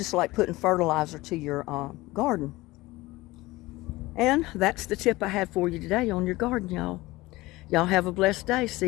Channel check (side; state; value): right; quieter; 19.8 dB